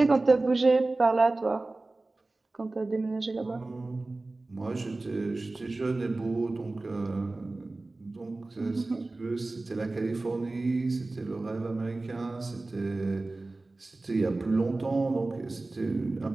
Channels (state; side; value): quieter; left; 3.1 dB